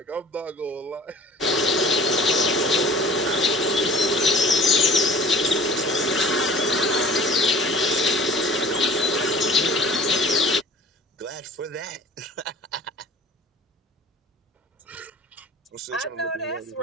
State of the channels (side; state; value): both; normal; correlation 0.46